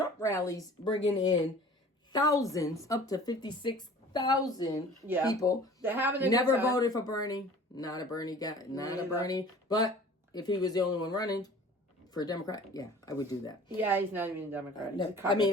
rallies bringing in thousands, up to 56,000 people. They're having never voted for Bernie. Not a Bernie guy. Not a Bernie. But if he was the only one running for a Democrat, yeah, I would do that. Yeah, he's not even a Democrat. No, I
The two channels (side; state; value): both; normal; correlation 0.46